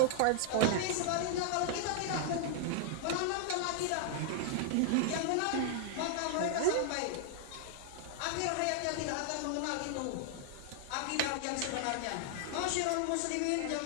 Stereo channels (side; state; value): both; different; correlation -0.01